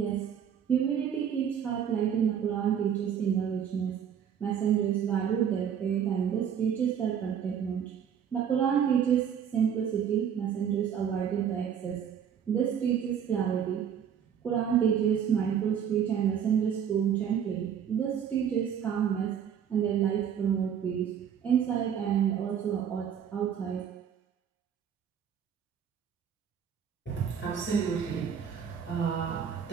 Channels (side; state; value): left; quieter; 8.4 dB